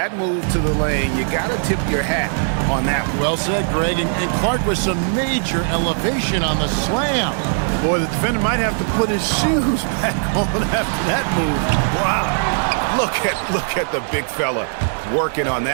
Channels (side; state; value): left; silent; digital silence